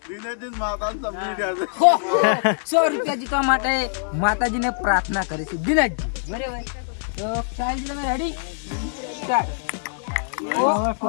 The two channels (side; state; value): right; silent; digital silence